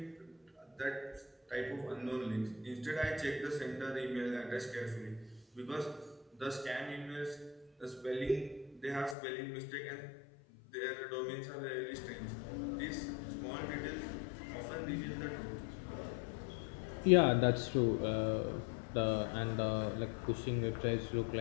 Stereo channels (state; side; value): drops out; right; at 9.2 s